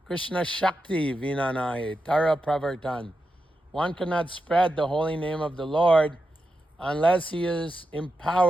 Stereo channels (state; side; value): normal; both; correlation 0.88